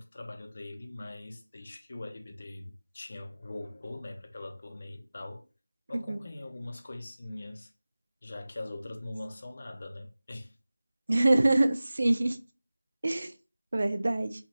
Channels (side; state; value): both; inverted; correlation -0.98